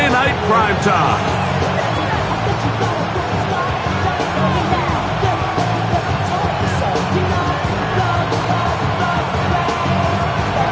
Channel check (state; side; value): identical; both; correlation 1.00